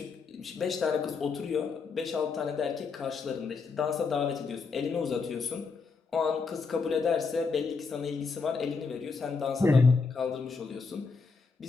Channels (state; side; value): quieter; right; 4.8 dB